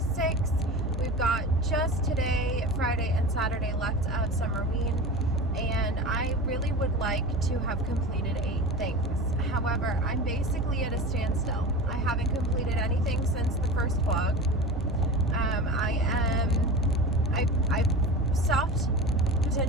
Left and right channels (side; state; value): both; normal; correlation 0.31